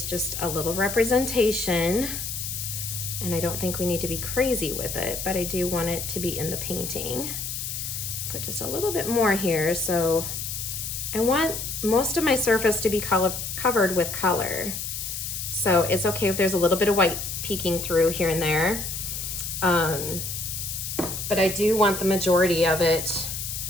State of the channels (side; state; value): left; noise; hiss, 5 dB below the sound